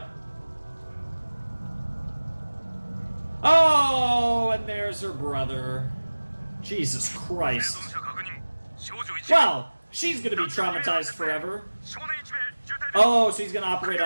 Oh, and there's her brother. Jesus Christ. Well, she's gonna be traumatized forever. Oh, so he's gonna operate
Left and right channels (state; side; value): inverted; both; correlation -1.00